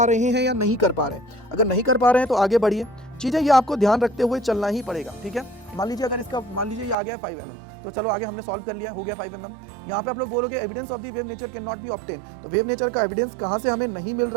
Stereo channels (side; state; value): left; drops out; at 7.0 s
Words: रहे हैं या नहीं कर पा रहे हैं। अगर नहीं कर पा रहे हैं तो आगे बढ़िए, चीजें ये आपको ध्यान रखते हुए चलना ही पड़ेगा। ठीक है, मान लीजिए अगर इसका मान लीजिए ये आ गया 5 mm, तो चलो आगे हमने सॉल्व कर लिया, हो गया 5 mm। यहाँ पे आप लोग बोलोगे evidence of the wave nature can not be obtain, तो वेव नेचर का एविडेंस कहाँ से हमें नहीं मिल